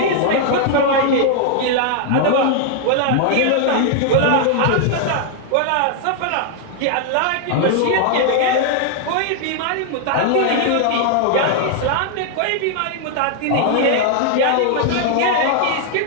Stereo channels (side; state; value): both; different; correlation 0.00